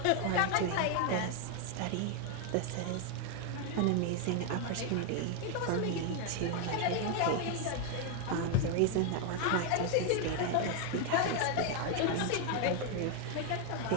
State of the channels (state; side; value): different; both; correlation 0.01